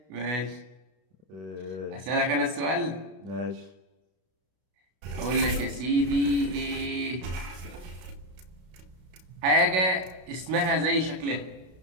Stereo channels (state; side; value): late; left; 32 ms